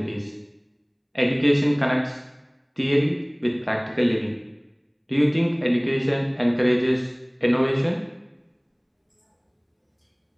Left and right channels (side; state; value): both; identical; correlation 1.00